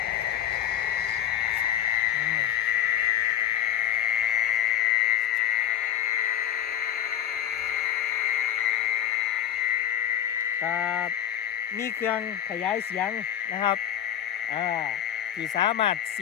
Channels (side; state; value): right; quieter; 10.2 dB